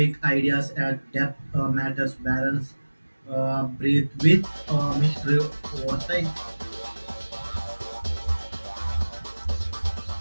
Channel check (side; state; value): both; inverted; correlation -1.00